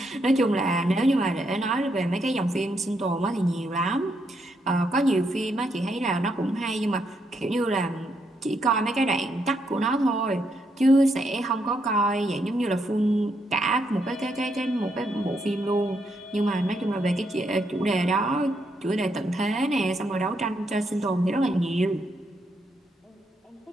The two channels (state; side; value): normal; both; correlation 0.78